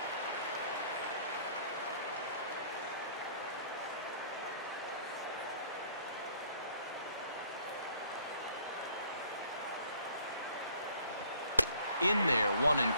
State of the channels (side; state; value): both; inverted; correlation -0.58